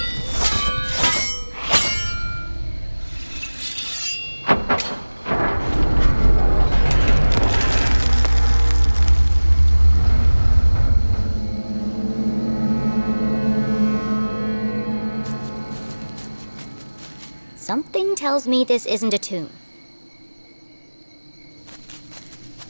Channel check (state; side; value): inverted; both; correlation -1.00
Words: Something tells me this isn't a tomb.